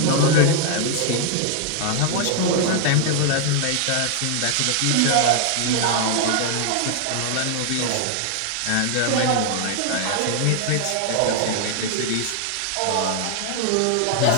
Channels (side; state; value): both; different; correlation 0.00